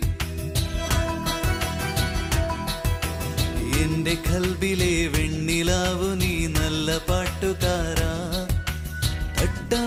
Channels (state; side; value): identical; both; correlation 1.00